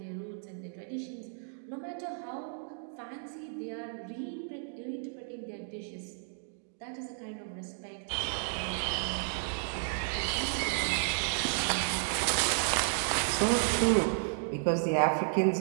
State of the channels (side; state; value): left; silent; digital silence